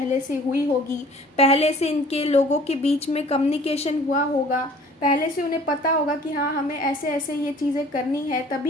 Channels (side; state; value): both; normal; correlation 0.51